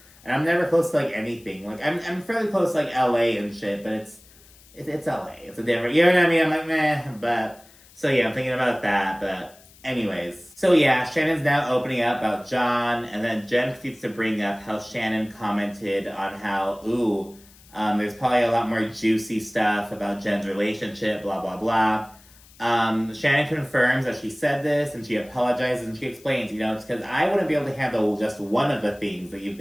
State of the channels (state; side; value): noise; left; hiss, 25 dB below the sound